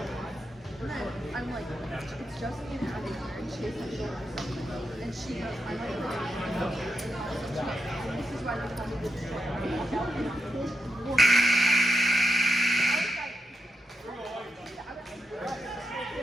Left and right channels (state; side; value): normal; both; correlation 0.86